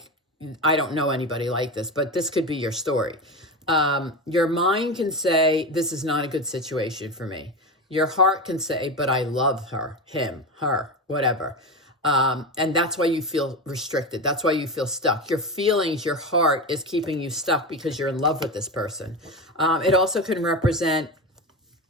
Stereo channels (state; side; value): normal; both; correlation 0.21